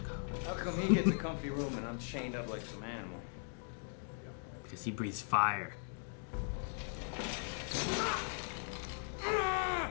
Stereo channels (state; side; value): silent; right; 52 dB below the other